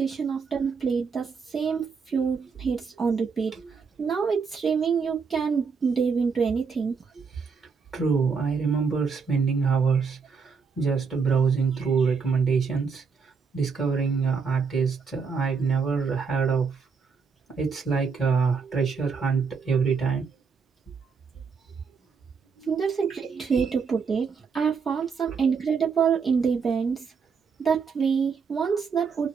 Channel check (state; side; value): quieter; left; 5.6 dB